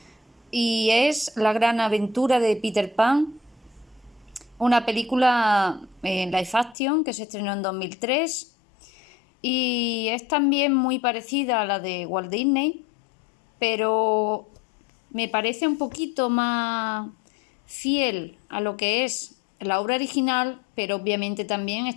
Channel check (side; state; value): right; drops out; at 6.8 s